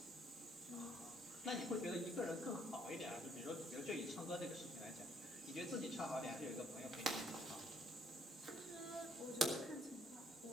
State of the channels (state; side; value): normal; both; correlation 0.67